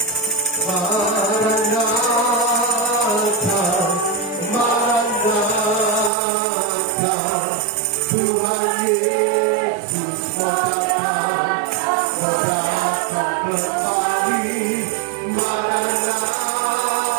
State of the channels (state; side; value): drops out; left; at 6.1 s